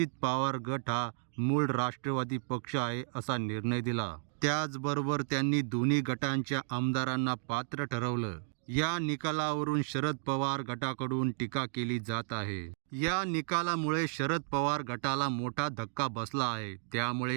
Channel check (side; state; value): left; silent; digital silence